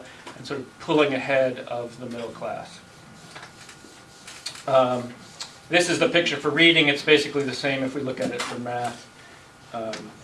and sort of pulling ahead of the middle class. This is the picture for reading. It's basically the same if we look at it for math.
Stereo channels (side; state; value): both; identical; correlation 1.00